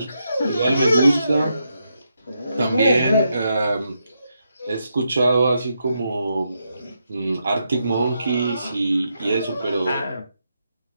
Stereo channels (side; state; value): both; inverted; correlation -0.82